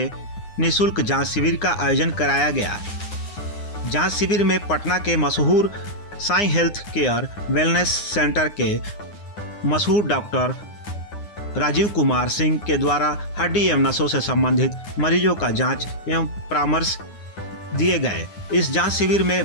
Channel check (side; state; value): right; late; 9.7 ms